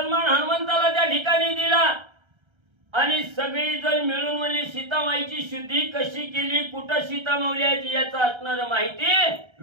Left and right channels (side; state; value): left; late; 1.3 ms